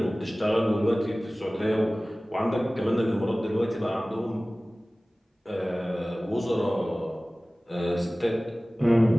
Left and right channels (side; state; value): both; normal; correlation 0.98